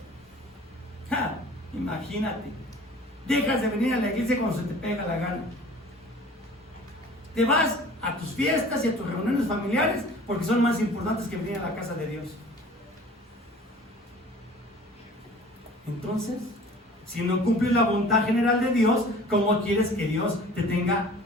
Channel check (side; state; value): both; normal; correlation 0.46